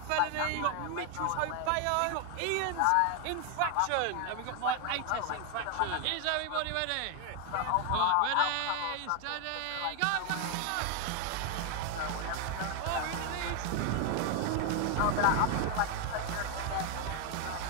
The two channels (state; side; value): different; both; correlation 0.01